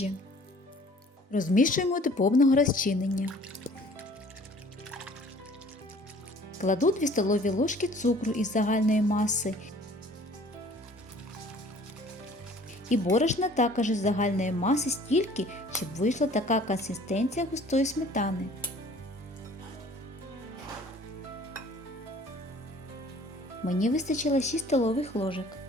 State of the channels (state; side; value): normal; both; correlation 0.52